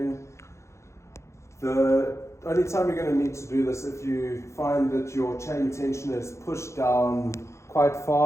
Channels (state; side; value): late; right; 0.14 ms